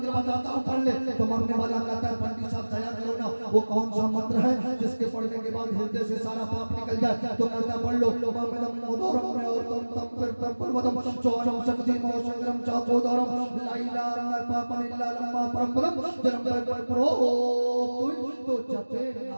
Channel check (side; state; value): both; inverted; correlation -1.00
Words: बताता हूँ, पढ़ ले। तो मरने वाला कहता है पंडित साहब दया करो ना, वो कौन सा मंत्र है जिसके पढ़ने के बाद हृदय से सारा पाप निकल जाए? तो कहता है पढ़ लो, तो जपे